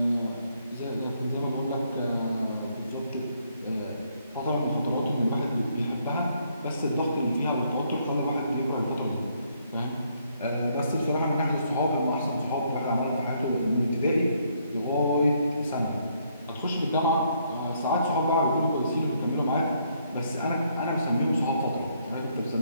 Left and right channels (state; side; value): inverted; both; correlation -0.71